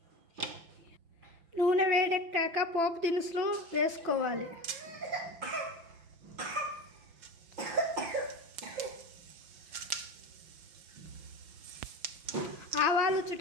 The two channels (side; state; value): left; late; 5.9 ms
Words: నూనె వేడెక్కాక పోపు దినుసులు వేసుకోవాలి. ఆవాలు